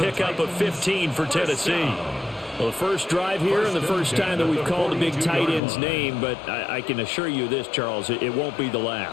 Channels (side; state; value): right; drops out; at 5.6 s